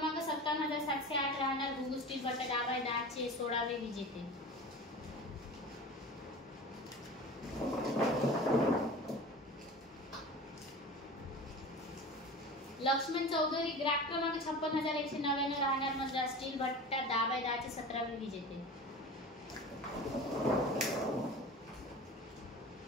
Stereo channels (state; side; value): normal; both; correlation 0.35